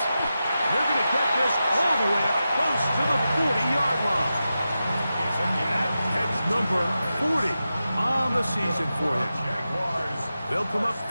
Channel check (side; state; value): both; inverted; correlation -0.91